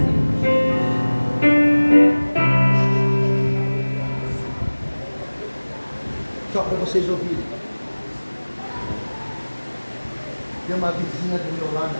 Só para vocês ouvirem. Tem uma vizinha do meu lado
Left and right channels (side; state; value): both; inverted; correlation -1.00